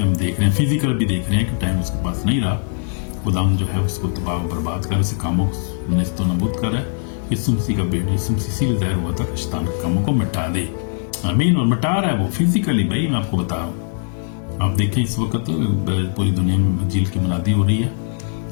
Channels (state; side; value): silent; right; 66 dB below the other